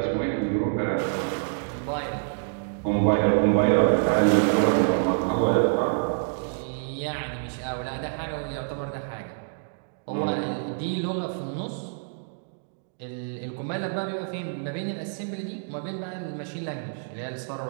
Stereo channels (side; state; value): left; silent; digital silence